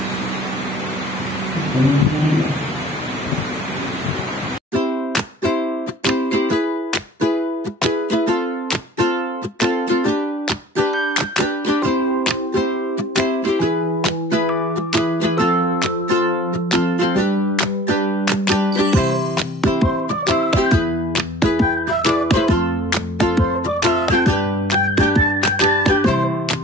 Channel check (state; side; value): normal; both; correlation 0.49